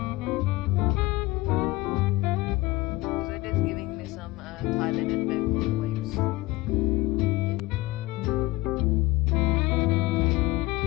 So it is giving me some Thailand and Bangkok vibes.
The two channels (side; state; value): right; quieter; 20.2 dB